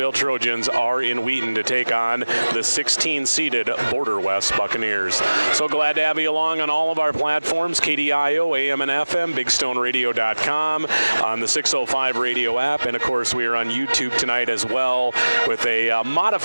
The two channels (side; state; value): both; inverted; correlation -1.00